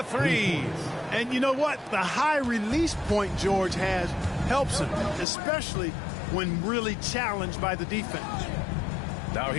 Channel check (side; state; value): right; drops out; at 5.2 s